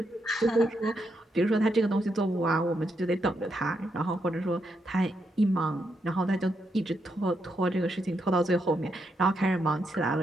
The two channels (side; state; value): both; normal; correlation 0.80